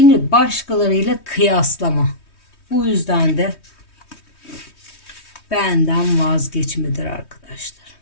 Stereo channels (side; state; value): right; late; 3.2 ms